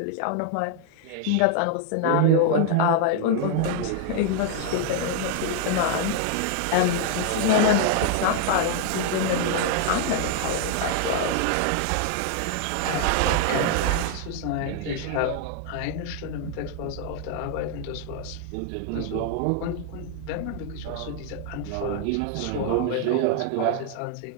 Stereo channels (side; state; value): both; different; correlation 0.00